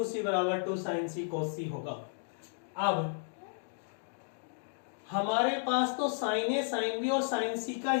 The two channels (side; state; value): right; silent; digital silence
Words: C बराबर 2 साइन सी कोस सी होगा। अब हमारे पास तो साइन ए साइन बी और साइन सी का